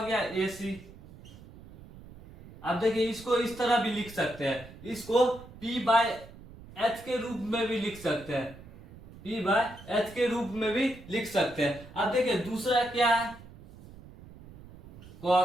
गया? ए सी। आप देखिए इसको इस तरह भी लिख सकते हैं, इसको P बाय एच के रूप में भी लिख सकते हैं, P बाय एच के रूप में भी लिख सकते हैं। अब देखिए दूसरा क्या है,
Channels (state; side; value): noise; right; rumble, 18 dB below the sound